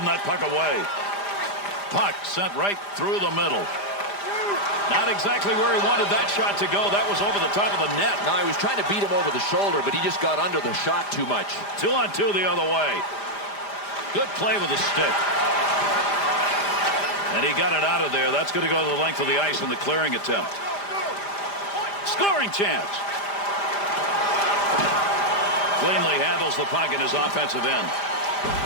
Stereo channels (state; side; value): late; right; 5.0 ms